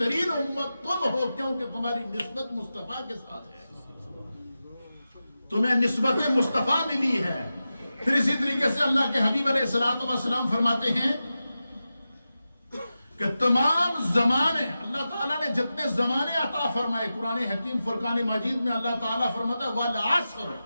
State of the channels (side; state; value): both; inverted; correlation -0.93